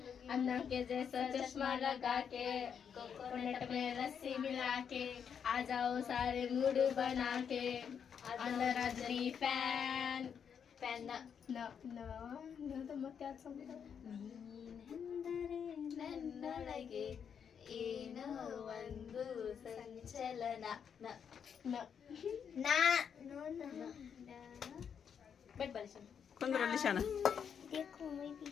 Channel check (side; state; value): right; quieter; 7.4 dB